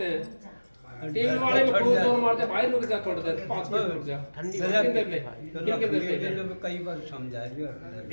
हैं, टीवी वाले में खूब जोर मारते, भाई रुक जा थोड़ी देर, 5 मिनट रुक जा, कितने देर ले कई बार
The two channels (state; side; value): inverted; both; correlation -1.00